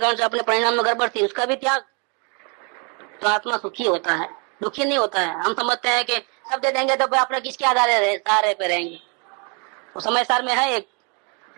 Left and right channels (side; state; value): left; quieter; 35.0 dB